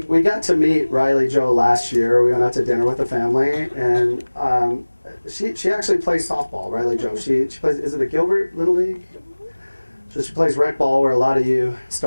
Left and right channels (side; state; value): both; inverted; correlation -1.00